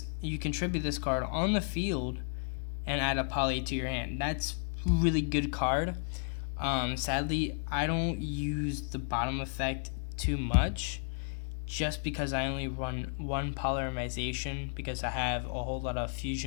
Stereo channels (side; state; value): right; silent; digital silence